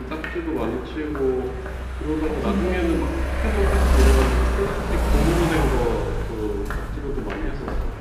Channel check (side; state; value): both; identical; correlation 1.00